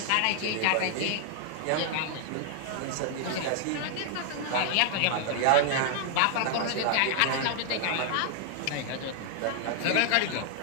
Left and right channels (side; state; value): both; different; correlation 0.00